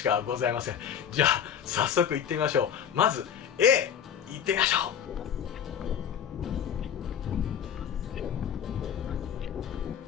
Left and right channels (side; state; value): right; quieter; 8.6 dB